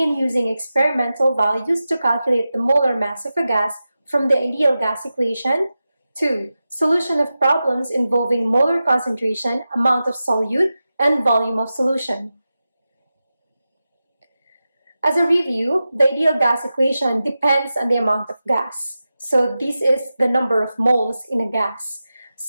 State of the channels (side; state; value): both; inverted; correlation -0.93